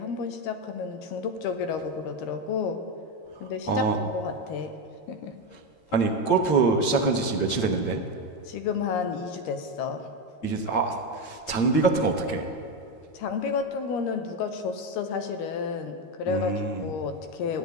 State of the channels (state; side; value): late; right; 13 ms